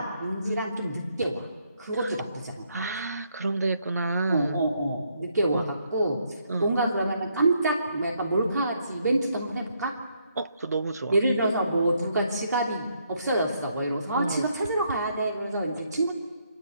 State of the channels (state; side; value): inverted; both; correlation -0.74